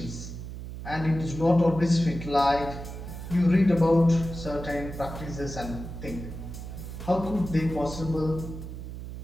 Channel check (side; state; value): right; noise; hum, 9 dB below the sound